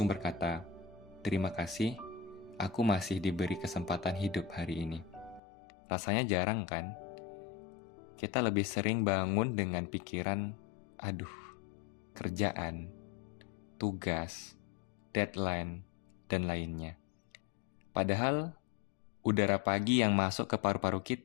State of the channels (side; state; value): right; drops out; at 5.4 s